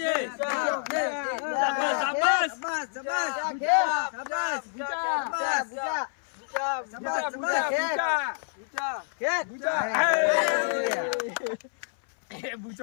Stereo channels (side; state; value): right; silent; 60 dB below the other